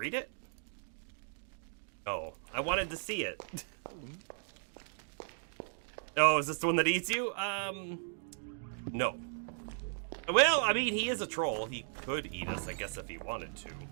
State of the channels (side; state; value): left; silent; digital silence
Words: it? Oh, I wanted to see it. Oh, is this the one that eats you? No. Well, I mean, he is a troll. He could eat us, I guess, if he wanted to.